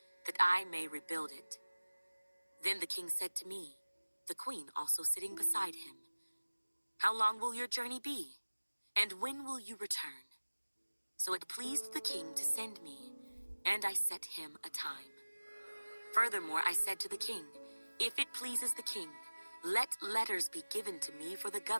that I may rebuild it." Then the king said to me, the queen also sitting beside him, "How long will your journey be? And when will you return?" So it pleased the king to send me, and I set him a time. Furthermore, I said to the king, "If it pleases the king, let letters be given to me for the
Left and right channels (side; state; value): both; inverted; correlation -1.00